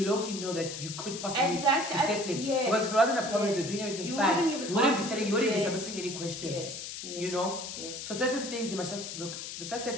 low-key know that you could possibly be settling. Yes. Because if it wasn't a problem, they're doing everything fine, you wouldn't be settling, you wouldn't be submitting any questions. Yes. You know? Yes. So certain things you must just look, the fact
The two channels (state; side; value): noise; left; hiss, 8 dB below the sound